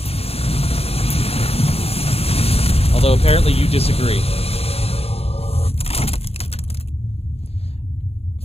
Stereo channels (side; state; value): right; late; 0.29 ms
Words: Although apparently you disagree.